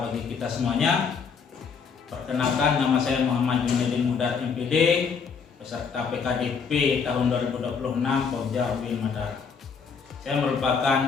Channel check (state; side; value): quieter; right; 5.9 dB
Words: bagi kita semuanya. Perkenalkan, nama saya Muhammad Junedin Mudar MPD, peserta PKDP tahun 2026 Pokja UIN Madar. Saya